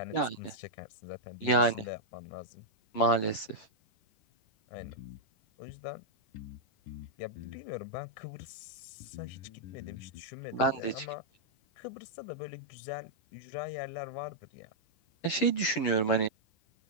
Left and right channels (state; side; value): late; right; 10 ms